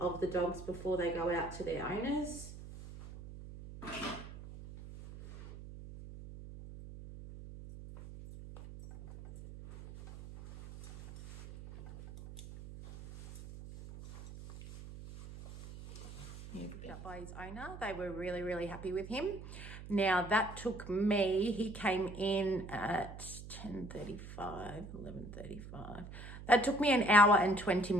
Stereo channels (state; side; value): noise; right; hum, 13 dB below the sound